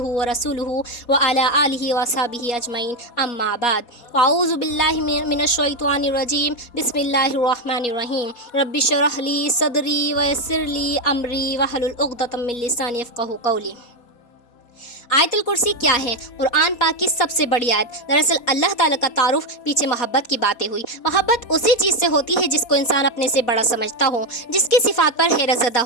व रसूलुहु व अला आलिहि व असहाबिहि अजमईन अम्मा बाद अऊज़ु बिल्लाहि मिनश शैतानिर रजीम बिस्मिल्लाहिर रहमानिर रहीम रब्बि इश्रह ली सदरी व यस्सिर ली अमरी वहलुल उक़दतम मिन लिसानी यफ़क़हू क़ौली। आयतुल कुर्सी क्या है? कुरान पाक की सबसे बड़ी आयत। दरअसल अल्लाह ताला का तारुफ पीछे मोहब्बत की बातें हुई। मोहब्बत उसी चीज़ से होती है जिसको इंसान अपने से बड़ा समझता हो, जिसकी सिफात पर हैरत ज़दा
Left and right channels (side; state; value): right; late; 4.2 ms